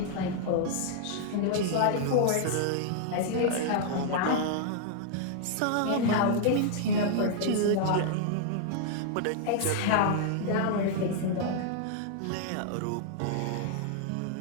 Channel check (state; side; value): different; both; correlation -0.01